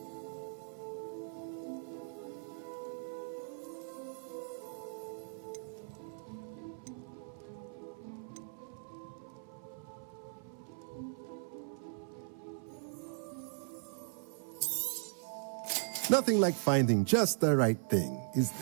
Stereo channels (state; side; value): silent; left; 52 dB below the other